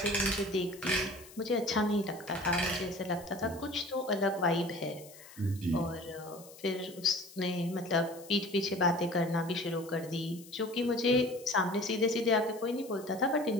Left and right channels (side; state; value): left; noise; hiss, 20 dB below the sound